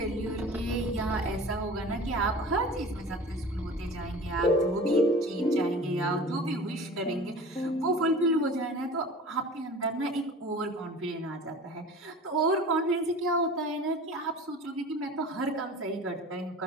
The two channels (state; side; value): normal; both; correlation 0.40